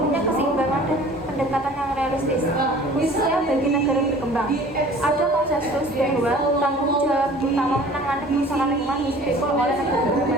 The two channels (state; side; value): normal; both; correlation 0.47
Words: keseimbangan dan pendekatan yang realistis, khususnya bagi negara berkembang. Ada konsensus bahwa tanggung jawab utama menangani kerusakan lingkungan dipikul oleh negara